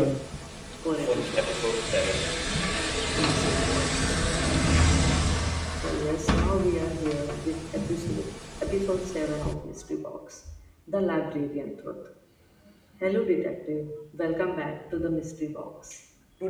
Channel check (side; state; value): both; identical; correlation 1.00